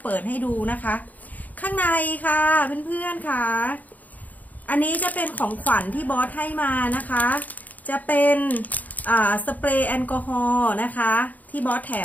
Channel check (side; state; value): right; late; 0.079 ms